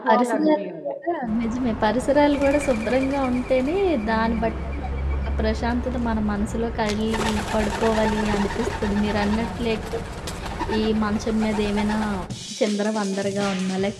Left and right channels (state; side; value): identical; both; correlation 1.00